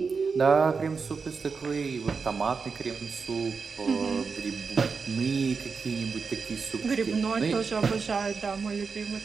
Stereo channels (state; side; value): quieter; left; 5.1 dB